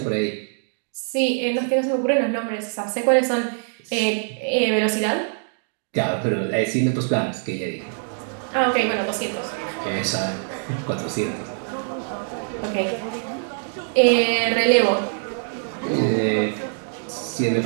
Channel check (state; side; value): silent; left; digital silence